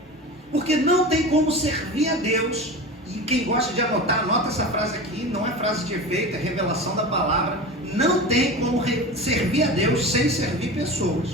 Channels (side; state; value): both; normal; correlation 0.30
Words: Porque não tem como servir a Deus. E quem gosta de anotar, anota essa frase aqui, não é frase de efeito, é revelação da palavra. Não tem como servir a Deus sem servir